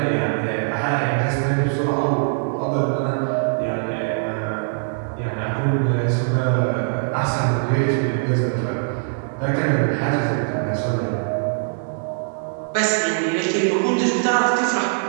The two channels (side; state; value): left; silent; digital silence